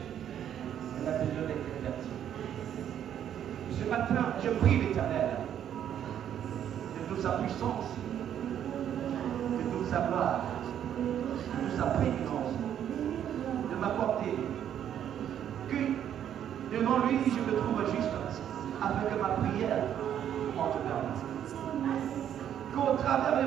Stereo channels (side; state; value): left; quieter; 9.9 dB